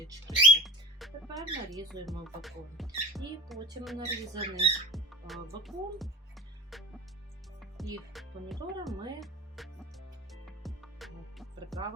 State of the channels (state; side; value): normal; both; correlation 0.38